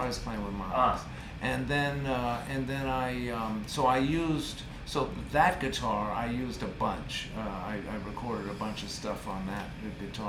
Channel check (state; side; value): identical; both; correlation 1.00